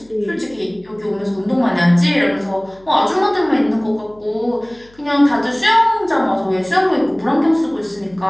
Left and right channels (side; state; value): left; noise; hum, 28 dB below the sound